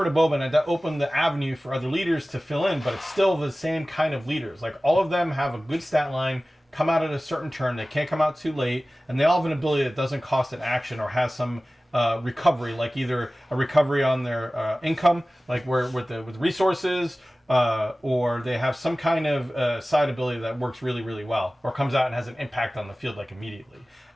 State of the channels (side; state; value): both; normal; correlation 0.97